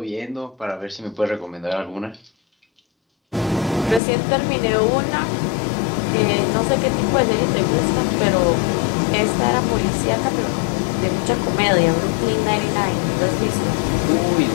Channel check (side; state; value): right; drops out; at 4.0 s